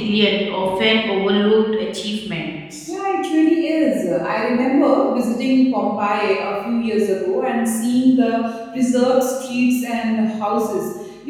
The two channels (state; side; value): identical; both; correlation 1.00